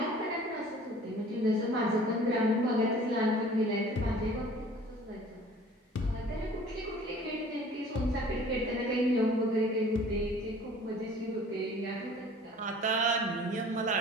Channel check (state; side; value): normal; both; correlation 0.49